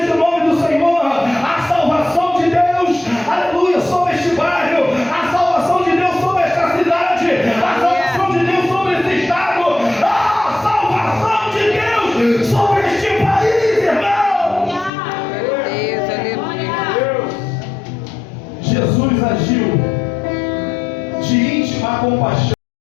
o nome do Senhor. A salvação de Deus, aleluia, sobre este bairro, a salvação de Deus sobre esta cidade, a salvação de Deus sobre esse estado, a salvação de Deus sobre este país, irmão. Deus, aleluia. Jesus agiu de íntima compaixão.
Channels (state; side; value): drops out; right; at 14.9 s